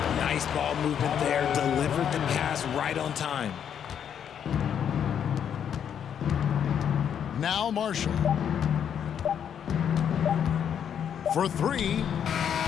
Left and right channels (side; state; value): right; quieter; 8.6 dB